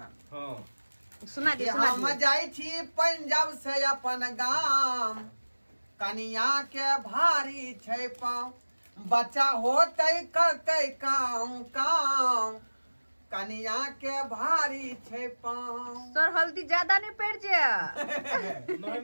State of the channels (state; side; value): inverted; both; correlation -1.00